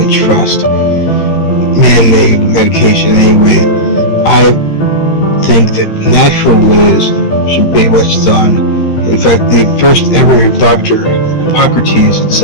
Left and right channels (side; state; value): right; late; 13 ms